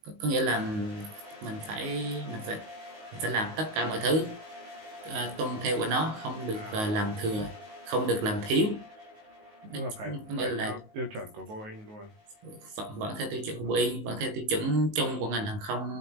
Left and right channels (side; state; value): left; late; 19 ms